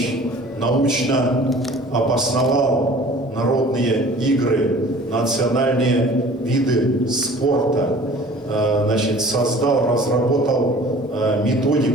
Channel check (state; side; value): normal; both; correlation 0.47